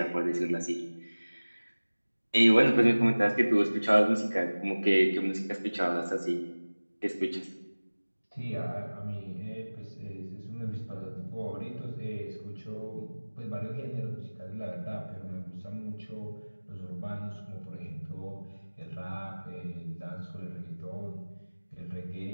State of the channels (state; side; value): inverted; both; correlation -1.00